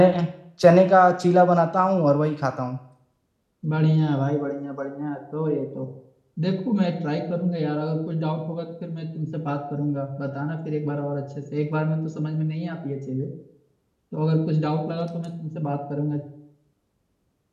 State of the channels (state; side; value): identical; both; correlation 1.00